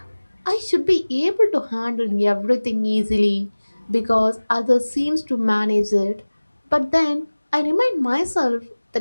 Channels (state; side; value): inverted; both; correlation -1.00